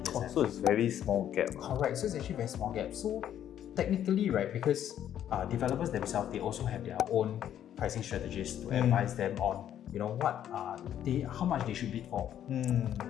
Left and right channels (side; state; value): right; quieter; 10.5 dB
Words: PSF. So it's very small gap. Correct. So it's actually very small gap. So technically, right, because developers themselves, they also have their own pricing strategies to advise them on, you know, how much they should bid for,